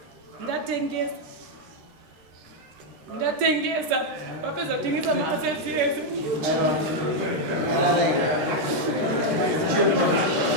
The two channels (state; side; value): late; left; 13 ms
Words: ndatengesa vapedza kutengesa maassets yese.